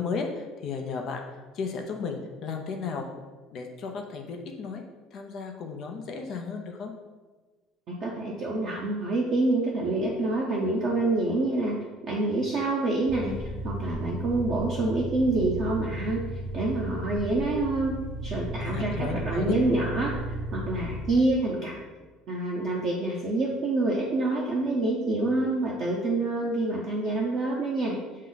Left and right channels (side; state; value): both; normal; correlation 0.58